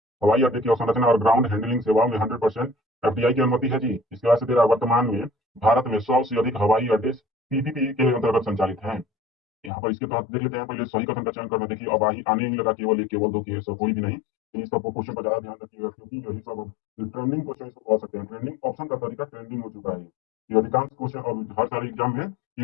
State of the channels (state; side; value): drops out; right; at 9.7 s